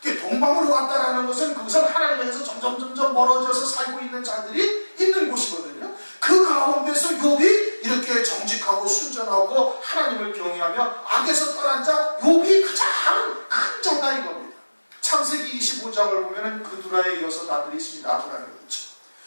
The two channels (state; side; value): inverted; both; correlation -1.00